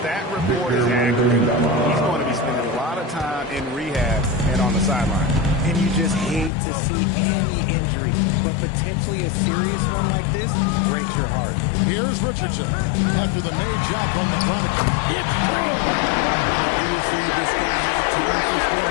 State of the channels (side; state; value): right; drops out; at 6.5 s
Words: that report is accurate, he's going to be spending a lot of time in rehab and on the sideline. And you just hate to see any injury, but potentially a serious one like this breaks your heart. Here's Richardson. After the made shot from the prodigy, it's through. Obviously, this guy has a talent for